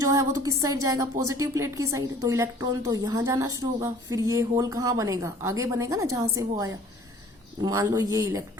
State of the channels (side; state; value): both; normal; correlation 0.52